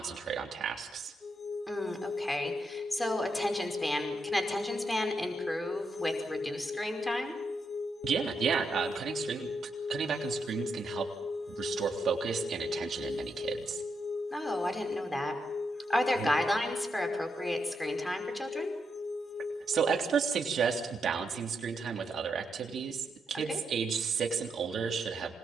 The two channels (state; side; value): normal; both; correlation 0.82